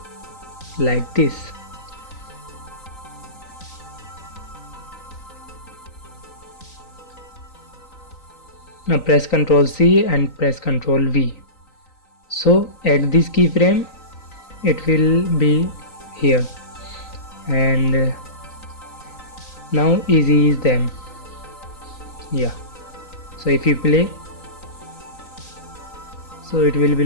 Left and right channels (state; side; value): late; right; 3.9 ms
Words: like this. Now press Ctrl C and press Ctrl V. So at this keyframe it will be here, and now ease them. Yeah, so if you play, so it will be